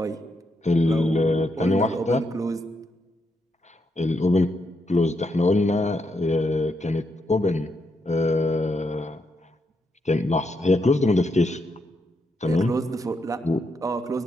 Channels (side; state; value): both; normal; correlation 0.80